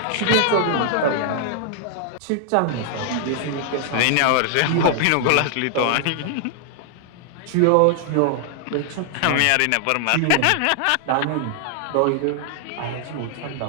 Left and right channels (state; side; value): different; both; correlation 0.00